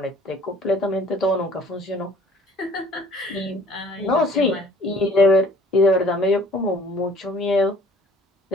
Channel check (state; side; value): normal; both; correlation 0.53